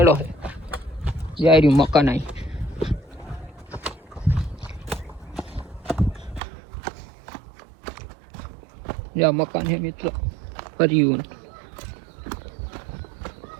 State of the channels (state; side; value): drops out; left; at 6.4 s